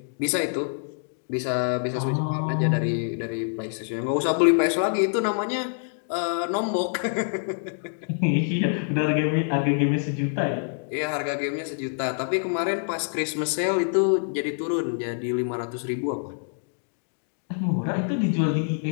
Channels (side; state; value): right; silent; digital silence